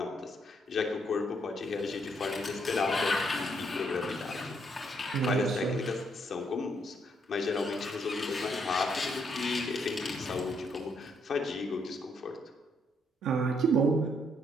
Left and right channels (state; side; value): normal; both; correlation 0.73